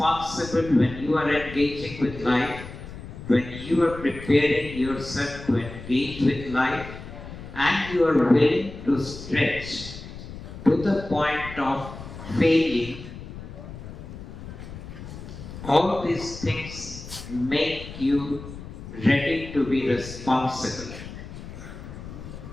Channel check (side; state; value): left; noise; rumble, 12 dB below the sound